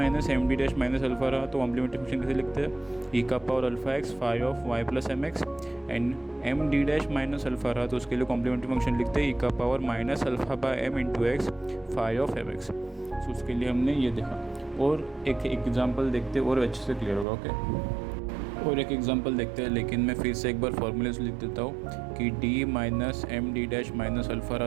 M D dash minus alpha रहा तो कॉम्प्लीमेंट्री फंक्शन कैसे लिखते हैं ई का power alpha x phi of Y plus M x, and m D dash minus alpha रहा तो उसके लिए कॉम्प्लीमेंट्री फंक्शन लिखते हैं ई का power minus alpha by M into x phi of M X. So उसके लिए हमने ये देखा, और एक एग्जाम्पल देखते और अच्छे से क्लियर होगा। ओके, और एक एग्जांपल देखते हैं, लेकिन मैं फिर से एक बार फॉर्मूले से लिख देता हूँ कि d minus M D dash minus alpha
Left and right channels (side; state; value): left; drops out; at 17.2 s